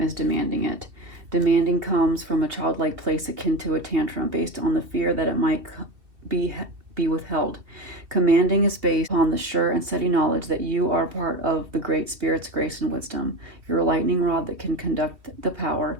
as demanding it. Demanding comes from a childlike place akin to a tantrum based on the fear that it might be withheld. Commanding is based on the sure and steady knowledge that you are part of the Great Spirit's grace and wisdom. You're a lightning rod that can conduct the power.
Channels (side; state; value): left; late; 2.4 ms